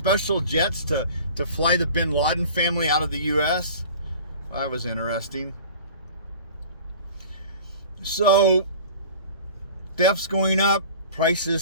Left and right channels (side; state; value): both; inverted; correlation -0.43